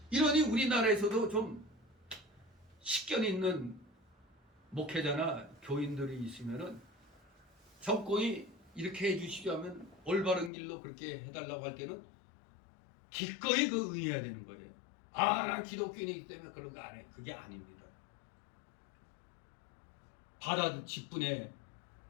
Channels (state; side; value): drops out; right; at 10.5 s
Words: 이러니 우리나라에서도 좀 식견 있는 목회자나 교인들이 있으면은 정권이 이렇게 해주시죠 하면 올바른 길로 그렇게 해달라고 할 때는 기꺼이 그 응해야 되는 거예요. 난 기독교인이기 때문에 그런 거 안 해. 그게 아닙니다. 직분에